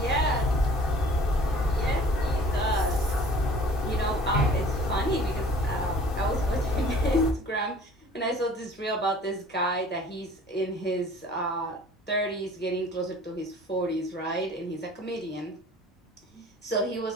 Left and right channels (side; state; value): both; normal; correlation 0.49